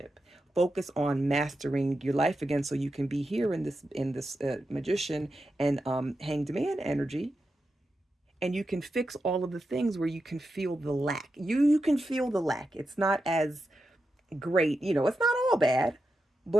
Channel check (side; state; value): both; normal; correlation 0.89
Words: Focus on mastering your life again, so you can be here in this magician and hanged man energy, and you can fix all of the things where you can feel the lack. You can feel the lack. It's not as great, it's not all bad,